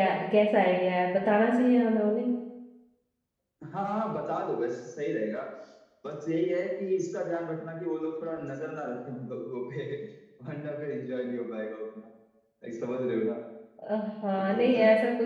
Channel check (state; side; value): identical; both; correlation 1.00